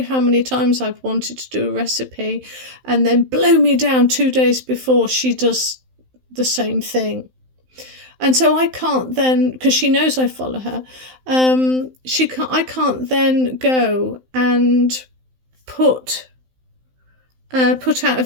how many times I've wanted to do a recipe and then blow me down 2 days before she does the same thing. And so I can't then, because she knows I follow her, I can't then go and put out a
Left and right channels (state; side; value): late; left; 16 ms